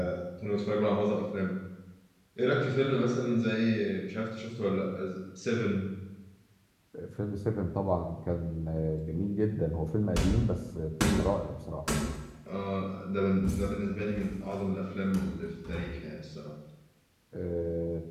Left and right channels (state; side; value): identical; both; correlation 1.00